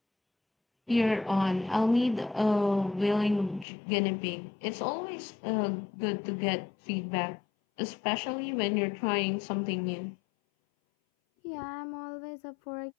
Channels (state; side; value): drops out; right; at 3.7 s